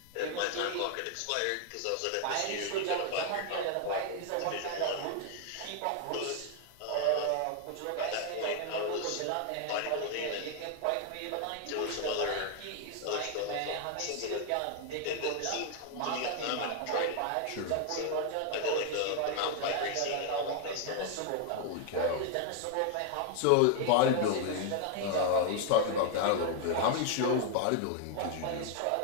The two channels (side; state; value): both; different; correlation 0.00